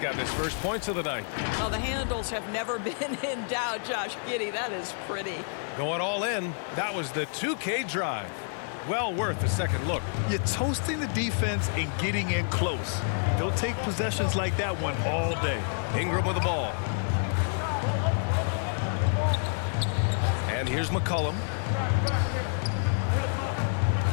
his first points of the night. Well, the handles have never been in doubt, Josh Giddey. That is pretty. Going all in. That was the 2K drive. Well worth a second look. You're toasting the defense and getting in close. They'll take possessions like that one all day. Ingram with the ball. And here's McCollum.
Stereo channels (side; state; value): right; silent; digital silence